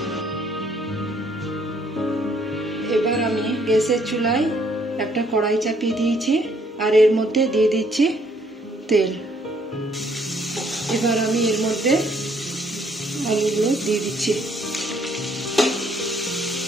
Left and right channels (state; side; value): normal; both; correlation 0.66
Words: এবার আমি গ্যাসের চুলায় একটা কড়াই চাপিয়ে দিয়েছি আর এর মধ্যে দিয়ে দিচ্ছি তেল। এবার আমি এর মধ্যে আলুগুলো দিয়ে দিচ্ছি।